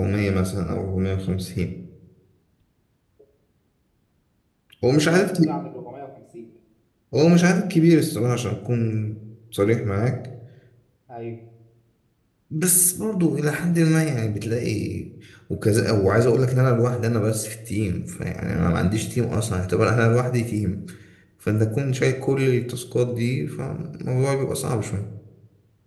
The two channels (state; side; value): identical; both; correlation 1.00